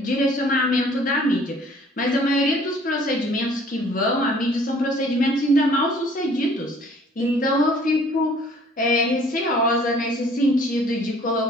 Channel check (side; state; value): both; normal; correlation 0.55